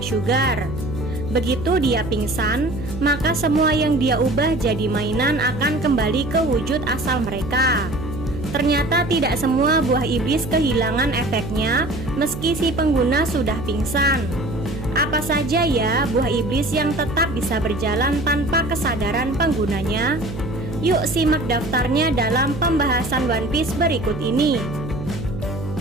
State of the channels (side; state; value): right; noise; hum, 9 dB below the sound